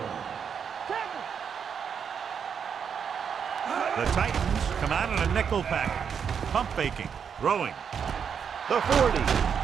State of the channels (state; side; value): quieter; left; 7.1 dB